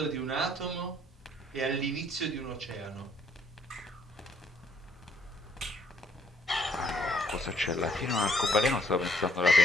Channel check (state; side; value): normal; both; correlation 0.67